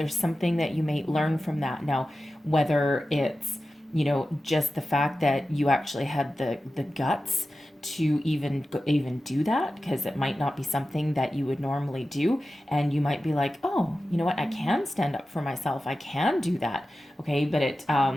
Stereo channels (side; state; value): both; normal; correlation 0.94